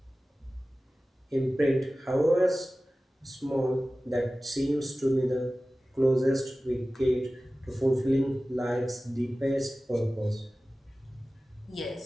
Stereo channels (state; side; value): normal; both; correlation 0.96